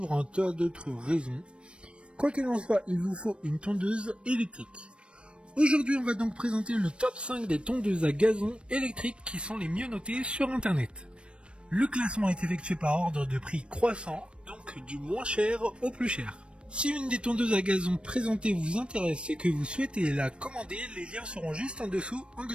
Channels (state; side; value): late; left; 0.058 ms